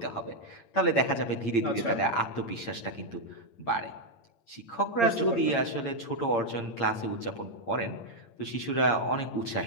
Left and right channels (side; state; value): right; late; 8.7 ms